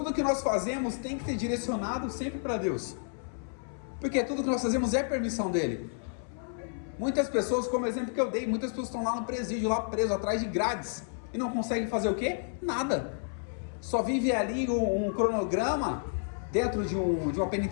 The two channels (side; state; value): right; silent; 57 dB below the other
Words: que nós fazemos tem que ser direcionado sempre para Deus. Porque tudo que nós fazemos é permissão dele. Muitas pessoas, como exemplo que eu dei, muitas pessoas estão lá no presídio, lá preso, atrás de grades. E não conseguem fazer o quê? Nada. Só vive ali um cronograma dentro de uma